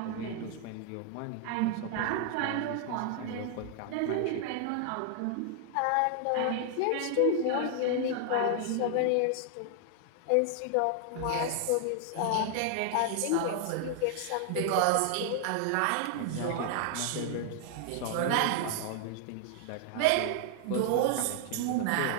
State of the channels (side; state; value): both; different; correlation 0.00